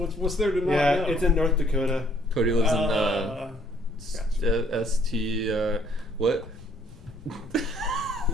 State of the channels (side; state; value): left; noise; rumble, 21 dB below the sound